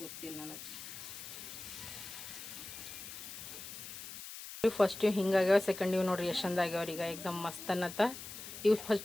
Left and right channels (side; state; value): left; noise; hiss, 11 dB below the sound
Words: ಗೊತ್ತಿಲ್ಲ ನನಗೆ. ಫಸ್ಟ್ ಹಿಂಗಾಗ್ಯಾವ, ಸೆಕೆಂಡ್ ಇವು ನೋಡ್ರಿ ಎಷ್ಟು ಚಂದ ಆಗ್ಯಾವ್ರಿ. ಈಗ ಎಕ್ದಮ್ ಮಸ್ತ್ ಅನ್ನತ್ತ. ಇವು